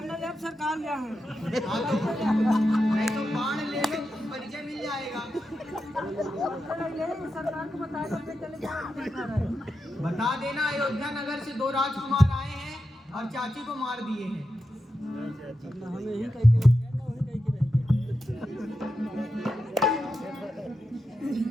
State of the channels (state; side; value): normal; both; correlation 0.88